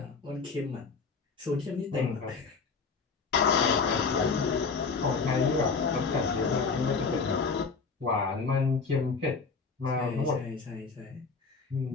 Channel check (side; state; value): right; quieter; 4.9 dB